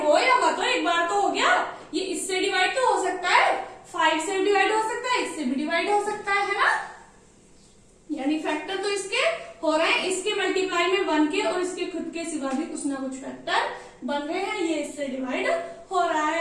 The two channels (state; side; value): identical; both; correlation 1.00